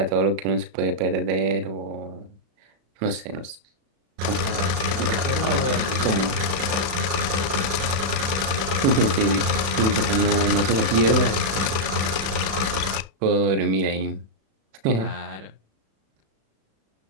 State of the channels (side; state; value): left; late; 36 ms